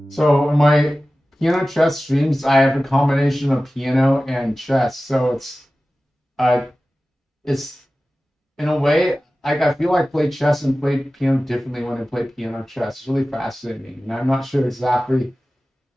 So in my piano chess streams, I have a combination of piano and chess. So uh it's in a way like I feel like I play chess and play piano differently when I play piano chess. It's really fascinating, and I'm not sure exactly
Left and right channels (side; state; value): both; normal; correlation 0.96